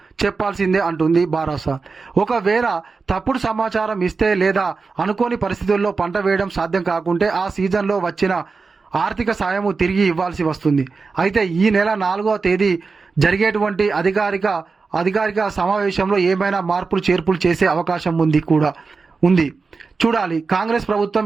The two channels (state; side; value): quieter; left; 4.5 dB